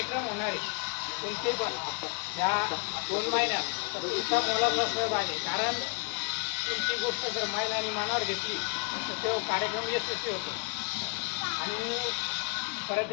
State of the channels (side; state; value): right; quieter; 35.5 dB